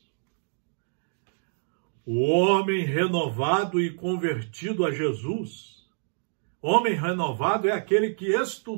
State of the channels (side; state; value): left; silent; digital silence